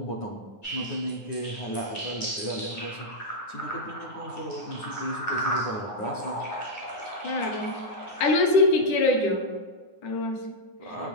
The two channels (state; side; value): late; right; 9.7 ms